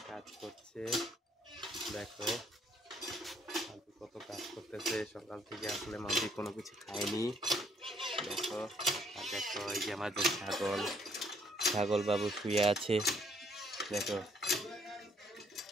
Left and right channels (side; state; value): both; normal; correlation 0.67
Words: কাজ করছে। দেখো মাম্পি কত কাজ করতেছে। সকাল থেকে আসলে মাম্পি কোনো কিছু খায়নি। দেখো আর দেখো এই যে আমাদের ছাগল বাবু শুয়ে আছে। দেখো